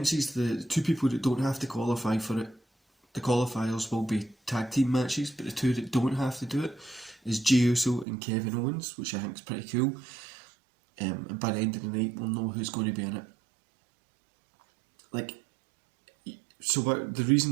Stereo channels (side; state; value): left; drops out; at 8.1 s